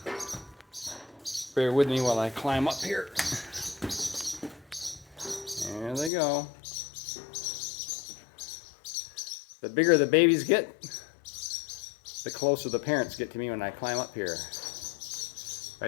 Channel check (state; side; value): drops out; right; at 6.1 s